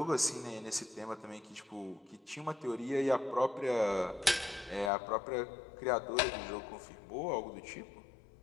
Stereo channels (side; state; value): right; drops out; at 4.9 s